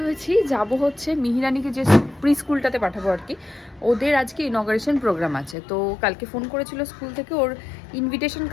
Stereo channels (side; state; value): right; drops out; at 5.6 s